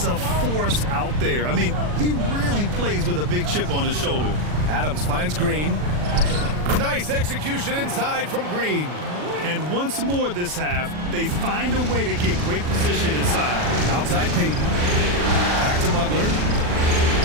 a force out there. I mean, he really plays with a big chip on his shoulder. Adams finds Green. Nice execution inside from Green. And once more this half, they find a way to get great position inside. Outside Payton. Back to Butler.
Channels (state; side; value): late; left; 40 ms